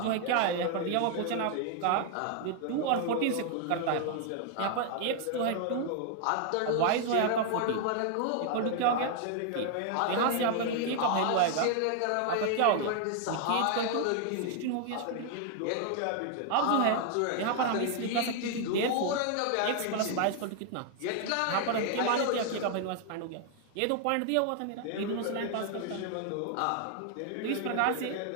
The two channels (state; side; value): different; both; correlation 0.00